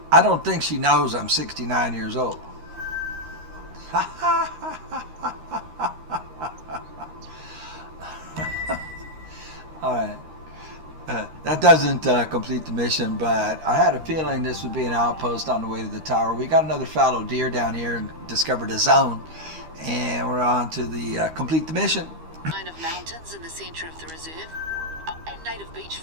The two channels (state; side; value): late; left; 13 ms